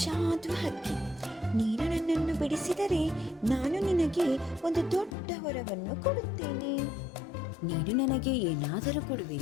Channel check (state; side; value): drops out; right; at 5.2 s